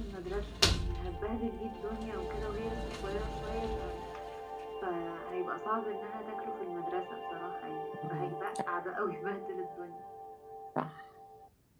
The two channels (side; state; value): both; identical; correlation 1.00